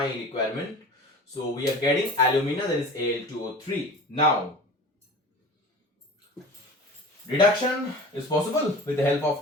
requirement. So we are getting alumina, that is Al2O3. Now reduction is possible with the help of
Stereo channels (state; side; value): normal; both; correlation 0.38